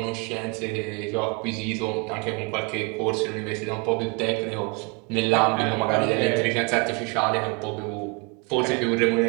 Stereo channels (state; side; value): quieter; left; 30.7 dB